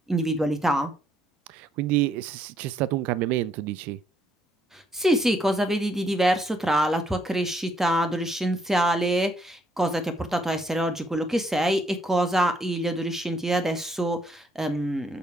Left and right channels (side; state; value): both; normal; correlation 0.70